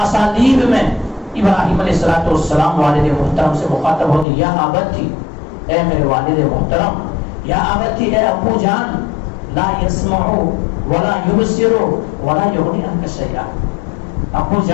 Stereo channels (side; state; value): right; drops out; at 4.2 s